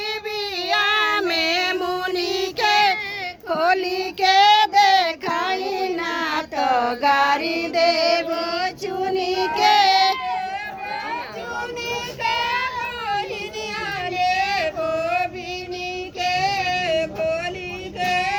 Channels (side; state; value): both; identical; correlation 1.00